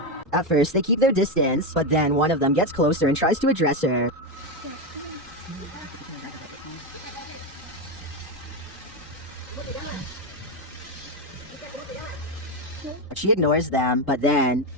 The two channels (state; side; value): normal; both; correlation 0.10